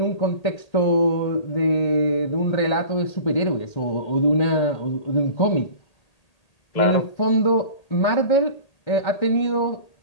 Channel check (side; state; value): right; late; 1.8 ms